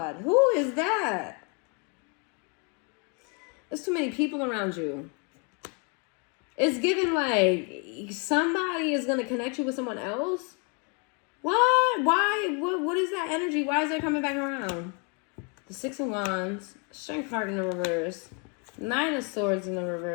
Who is that? There's too many people around you. It's given like somebody is going to connect you with someone else. What? Why? What is that energy? Why is that coming back around? The Six of Wands, Strength card in the reverse, Nine of Swords in the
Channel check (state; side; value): quieter; right; 35.5 dB